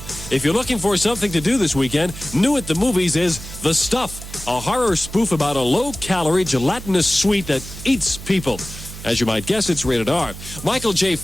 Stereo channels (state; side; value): noise; right; hum, 12 dB below the sound